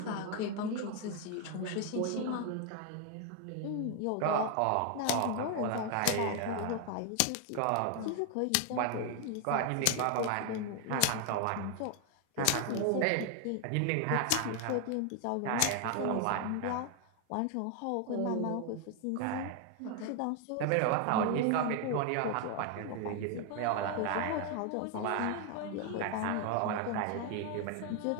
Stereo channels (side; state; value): both; different; correlation 0.00